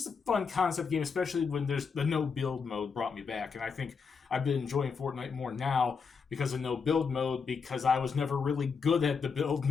a fun concept game, especially when there's the no build mode brought me back. And I think I've been enjoying Fortnite more now because of no build mode, because I was never really good at the build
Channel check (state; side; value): quieter; right; 5.6 dB